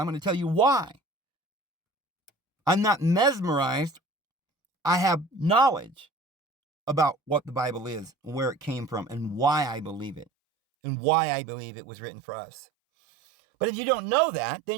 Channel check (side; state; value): left; drops out; at 10.2 s